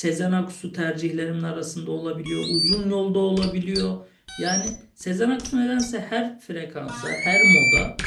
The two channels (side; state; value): both; identical; correlation 1.00